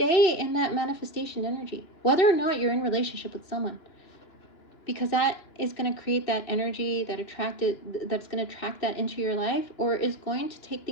in that manifestation energy, whether or not you're in relationship with someone, because that is going to create that energy that's going to attract that into your life, or is going to take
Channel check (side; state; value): right; late; 2.9 ms